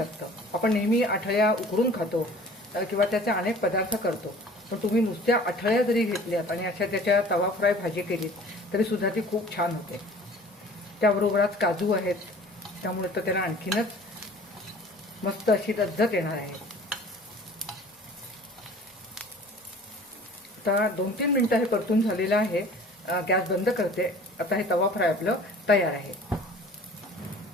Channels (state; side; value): normal; both; correlation 0.47